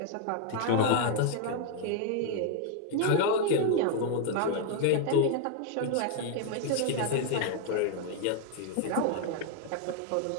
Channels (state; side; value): different; both; correlation 0.00